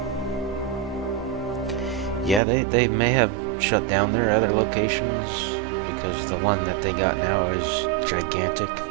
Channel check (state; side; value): drops out; left; at 2.4 s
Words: Yeah, they may have shut down their other locations because the one that they got now is gigantic.